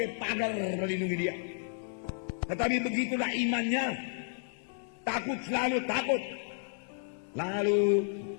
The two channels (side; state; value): right; silent; digital silence